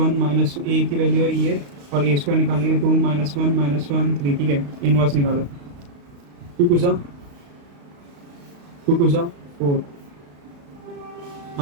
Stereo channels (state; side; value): late; left; 35 ms